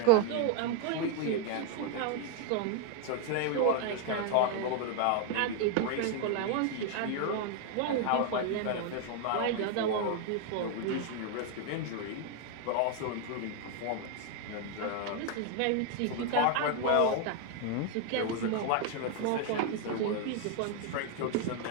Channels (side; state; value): both; different; correlation 0.01